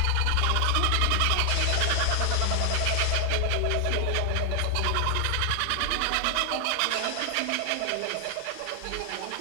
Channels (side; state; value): both; different; correlation 0.00